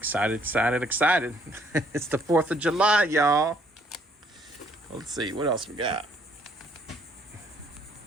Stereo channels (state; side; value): normal; both; correlation 0.65